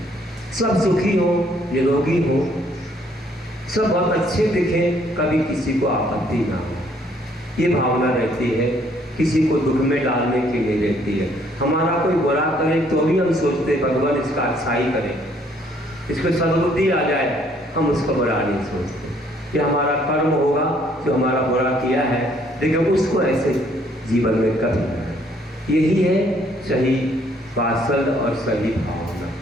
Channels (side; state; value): both; normal; correlation 0.65